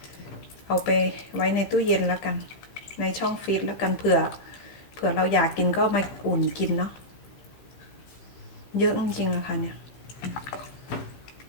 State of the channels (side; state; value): right; late; 15 ms